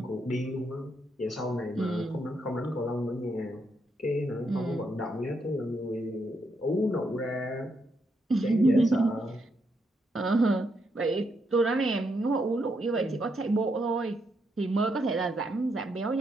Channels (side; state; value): both; normal; correlation 0.78